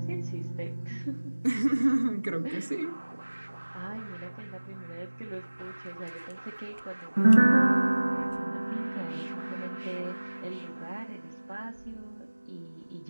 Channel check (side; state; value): both; inverted; correlation -1.00